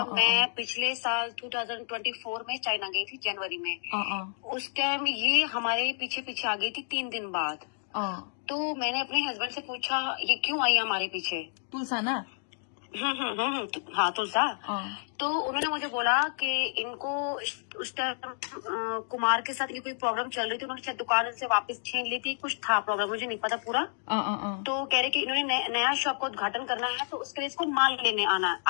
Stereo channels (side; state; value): right; silent; digital silence